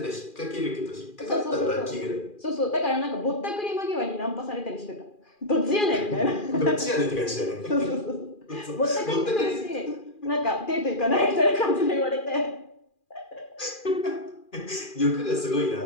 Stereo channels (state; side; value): late; right; 2.4 ms